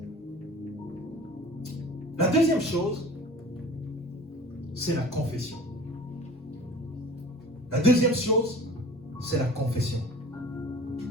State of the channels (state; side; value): normal; both; correlation 0.42